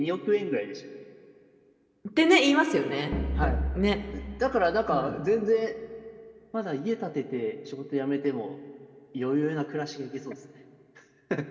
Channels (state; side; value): identical; both; correlation 1.00